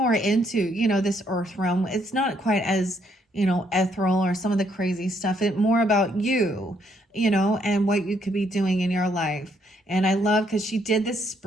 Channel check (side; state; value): both; normal; correlation 0.71